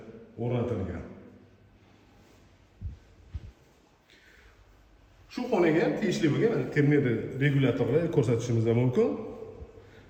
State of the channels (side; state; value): both; identical; correlation 1.00